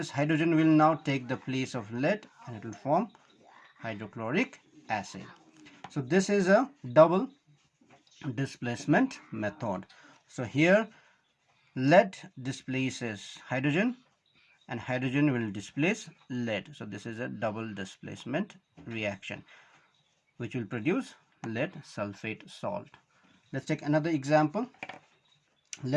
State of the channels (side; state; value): both; identical; correlation 1.00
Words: hydrogen will now take the place of lead and it will form hydrochloric acid. So this is a double displacement method. So here lead displaces hydrogen and hydrogen will displace lead. So this is a double displacement reaction which will produce lead sulfate salt. Let's take another example.